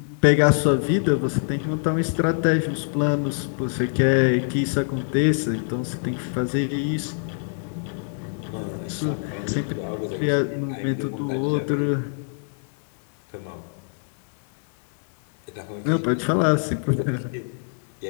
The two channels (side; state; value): right; silent; 62 dB below the other